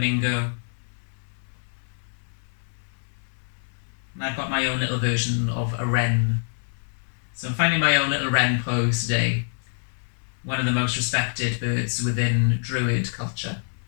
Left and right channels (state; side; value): silent; right; 61 dB below the other